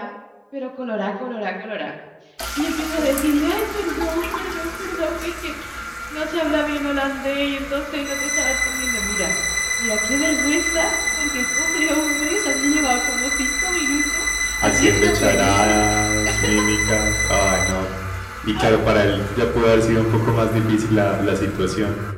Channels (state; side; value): identical; both; correlation 1.00